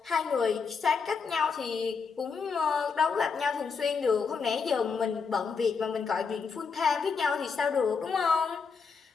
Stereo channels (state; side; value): quieter; right; 5.4 dB